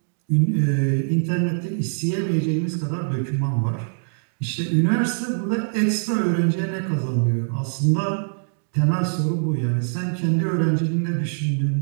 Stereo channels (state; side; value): silent; left; digital silence